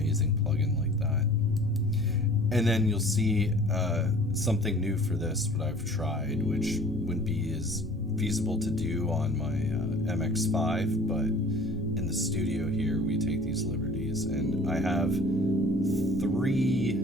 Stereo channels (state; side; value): normal; both; correlation 0.48